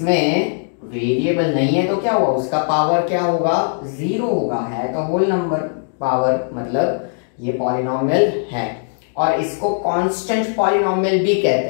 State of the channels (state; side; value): silent; right; digital silence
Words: वेरिएबल नहीं है तो क्या हुआ, उसका पावर क्या होगा, 0 होगा, है तो होल नंबर पावर, मतलब ये पॉलिनॉमियल है। और इसको कांस्टेंट पॉलिनॉमियल भी कहते